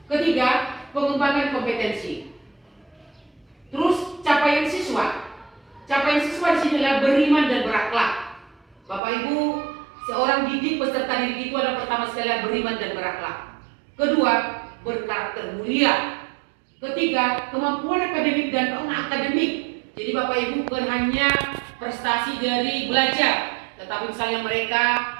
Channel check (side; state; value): left; drops out; at 9.0 s